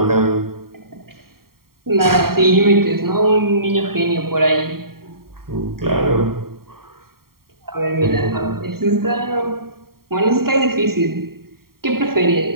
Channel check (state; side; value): late; left; 0.93 ms